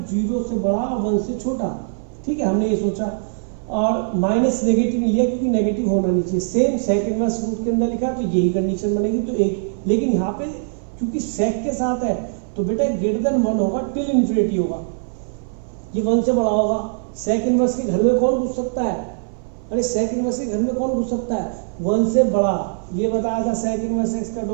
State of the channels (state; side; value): silent; left; 60 dB below the other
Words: 0 से बड़ा और 1 से छोटा, ठीक है, हमने ये सोचा। और माइनस नेगेटिव लिया क्योंकि नेगेटिव होना नहीं चाहिए। सेम सेक इनवर्स रूट के अंदर लिखा है तो यही कंडीशन बनेगी, तो एक, लेकिन यहाँ पे क्योंकि सेक के साथ है तो बेटा ग्रेटर देन 1 होगा, टिल इन्फिनिटी होगा, ये 1 से बड़ा होगा। सेक इनवर्स के घर में कौन घुस सकता है? अरे सेक इनवर्स के घर में कौन घुस सकता है? 1 से बड़ा। ये बताया था सेक इनवर्स एक्स का